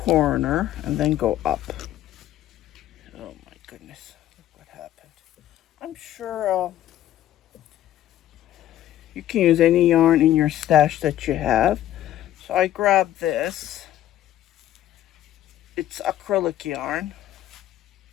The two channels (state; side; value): quieter; right; 12.9 dB